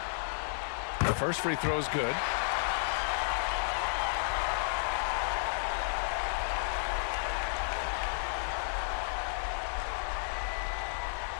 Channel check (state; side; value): silent; right; 56 dB below the other